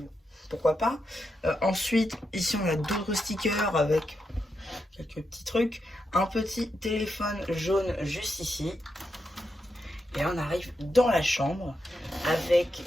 pourquoi pas. Ensuite, ici on a d'autres stickers avec quelques petits trucs. Un petit téléphone jaune juste ici. Et on arrive dans la chambre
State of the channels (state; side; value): normal; both; correlation 0.85